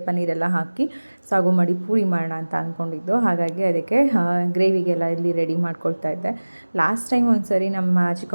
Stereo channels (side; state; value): both; inverted; correlation -1.00